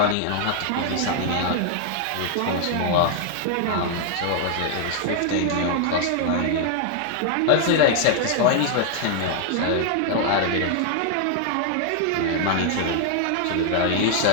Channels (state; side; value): different; both; correlation 0.00